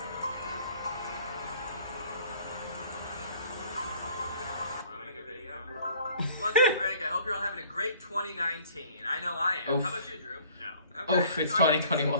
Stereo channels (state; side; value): inverted; both; correlation -0.53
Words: What's up, Greg? I hope you're all having a great 2019. I know I am. Oof. How about you, Drew? No. Okay. Oof, it's So I think 2021.